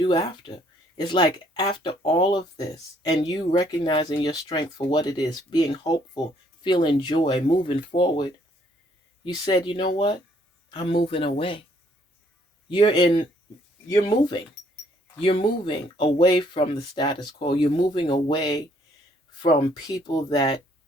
after. It's like after all of this and you recognizing your strength for what it is, being hopeful, feeling joy, moving forward, you said, you know what? I'm moving away. You're in, you're moving. You're moving away from the status quo. You're moving away from people that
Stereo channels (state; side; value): normal; both; correlation 0.65